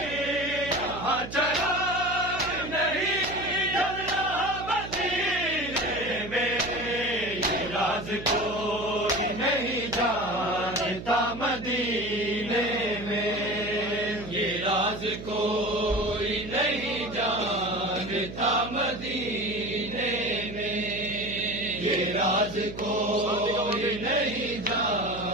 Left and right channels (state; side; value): noise; right; hum, 11 dB below the sound